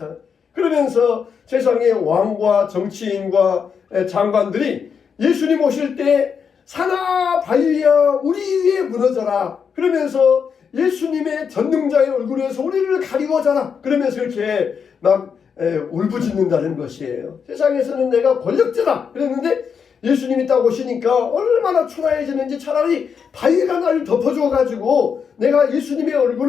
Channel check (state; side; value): quieter; right; 6.6 dB